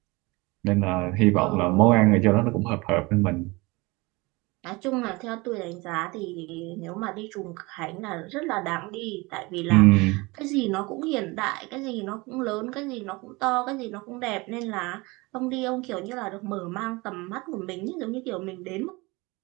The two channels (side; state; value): left; quieter; 24.2 dB